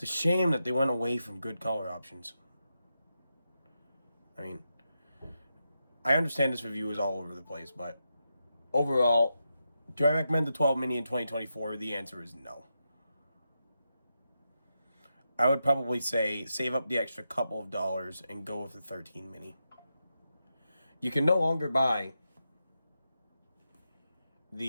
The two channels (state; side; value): inverted; both; correlation -0.87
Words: a shame that they went away from good color options. I mean, I understand this review is all over the place, but overall, do I recommend the 12 mini in 2024? The answer is no. I would probably say save up the extra couple of dollars and go with the 13 mini. You can no longer buy